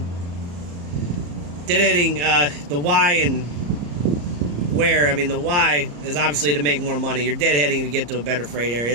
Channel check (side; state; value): left; late; 34 ms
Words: the why and where. I mean, the why is obviously to make more money. You're deadheading to get to a better freight